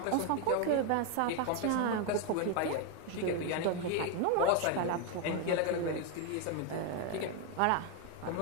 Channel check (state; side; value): different; both; correlation 0.01